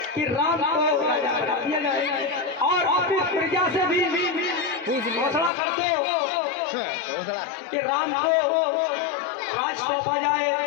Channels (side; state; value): right; drops out; at 5.5 s